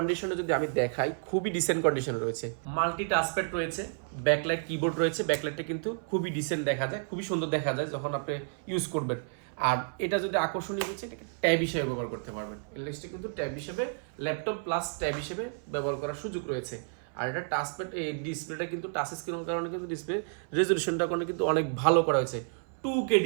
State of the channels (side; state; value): left; silent; 57 dB below the other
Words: যদি আমি দেখাই, খুবই ডিসেন্ট কন্ডিশনে রয়েছে, মাল্টি টাচপ্যাড রয়েছে, ব্যাকলাইট, কিবোর্ড রয়েছে, ব্যাকলাইটটা কিন্তু খুবই ডিসেন্ট দেখা যায়, খুবই সুন্দর দেখা যায় যখন আপনি ইউজ করবেন। আর এটা যদি আকর্ষণীয় হচ্ছে, এটাকে ট্যাব হিসেবে ব্যবহার করতে পারবেন, এলএসটা কিন্তু ট্যাব হিসেবে, ল্যাপটপ প্লাস ট্যাব হিসেবে ব্যবহার করার সুযোগ রয়েছে। আর এটা টাচপ্যাড, এই ডিসপ্লেটা কিন্তু টাচ স্ক্রিনের কারণে কিন্তু ডিসপ্লে রেজলিউশনটা কিন্তু অনেক ভালো করা হয়েছে, 2K